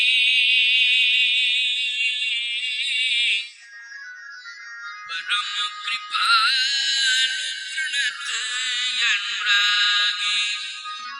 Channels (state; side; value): identical; both; correlation 1.00